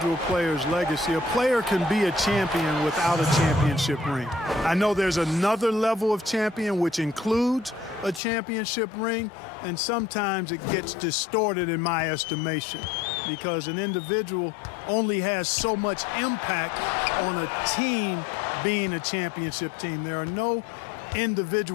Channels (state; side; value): drops out; right; at 8.2 s